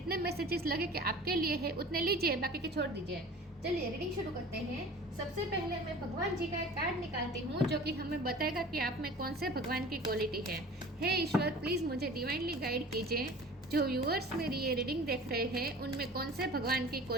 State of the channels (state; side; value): normal; both; correlation 0.42